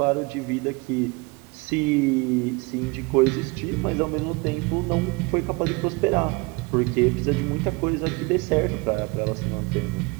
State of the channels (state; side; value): quieter; left; 26.6 dB